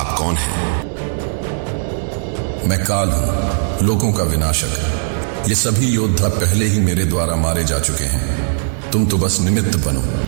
कौन हैं? मैं काल हूं, लोगों का विनाशक। ये सभी योद्धा पहले ही मेरे द्वारा मारे जा चुके हैं। तुम तो बस निमित्त बनो।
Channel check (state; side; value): silent; left; 63 dB below the other